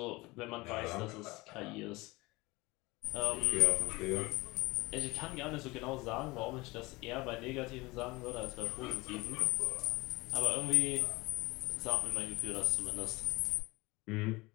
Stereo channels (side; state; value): right; quieter; 22.6 dB